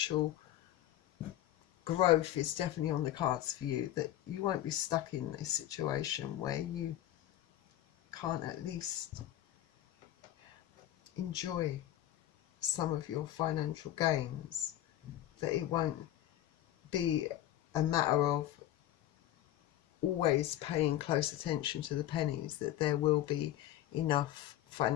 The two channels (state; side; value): quieter; right; 13.2 dB